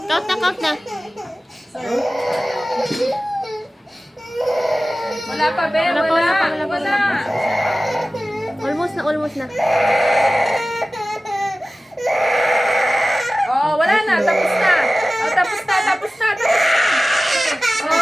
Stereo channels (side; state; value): both; normal; correlation 0.96